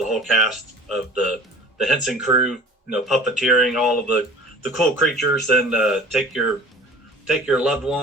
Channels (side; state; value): both; normal; correlation 0.44